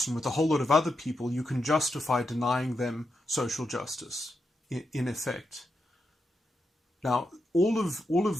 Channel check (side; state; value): both; normal; correlation 0.85